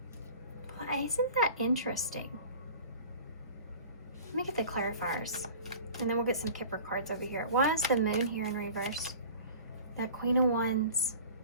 Well, isn't that interesting? Let me get the clarifiers, and then we'll get some Kipper cards over here. Why is the moon here in reverse? That Queen of Wands.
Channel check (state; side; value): inverted; both; correlation -0.42